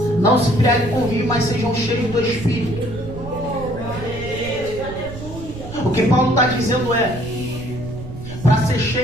não se embriaguem com vinho, mas sejam cheios do Espírito. O que Paulo está dizendo é: para ser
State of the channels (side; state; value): right; noise; rumble, 11 dB below the sound